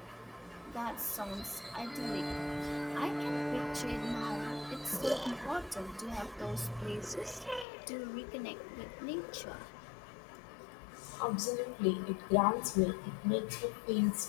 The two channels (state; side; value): drops out; right; at 7.7 s